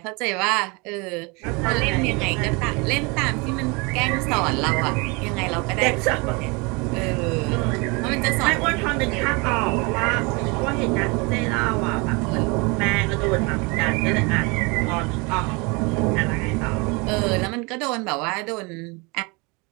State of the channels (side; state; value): left; quieter; 28.4 dB